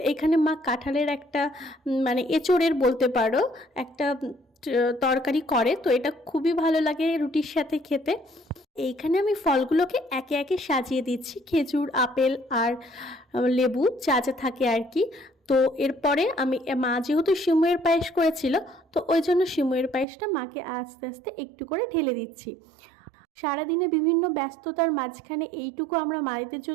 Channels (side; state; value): left; drops out; at 20.1 s